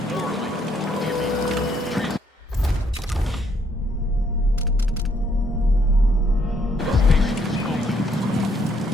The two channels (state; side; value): normal; both; correlation 0.69